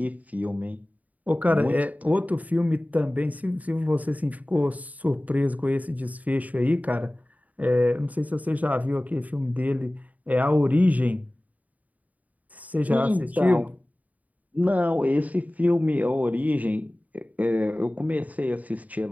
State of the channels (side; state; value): left; late; 0.074 ms